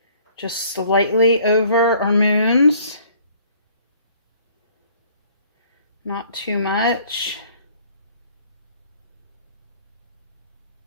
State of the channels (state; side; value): inverted; both; correlation -0.57